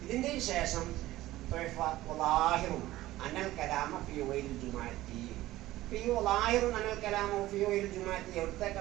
ഇതിന്റെ ശേഷം അനൽ കലാമ ഫീ ഗൈരിൽ ജുമുഅത്തി, ഫീ ളാഹിറുൻ അനൽ കലാമ ഫീ ഗൈരിൽ ജുമുഅത്തി എവിടത്തേക്കാ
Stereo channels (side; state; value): left; quieter; 16.2 dB